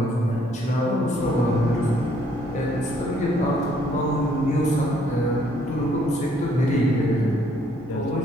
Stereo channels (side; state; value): both; normal; correlation 0.66